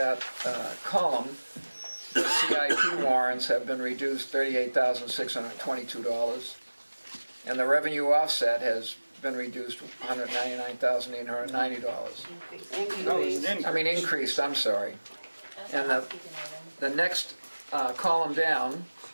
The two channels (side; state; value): both; inverted; correlation -1.00